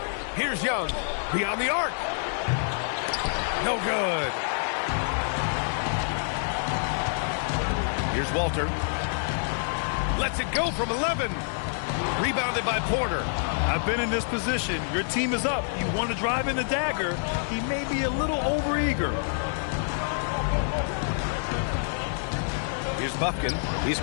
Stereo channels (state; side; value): silent; right; digital silence